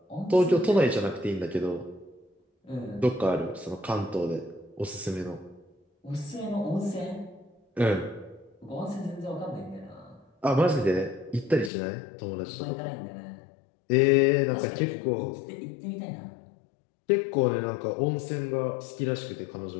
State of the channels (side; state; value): right; drops out; at 11.7 s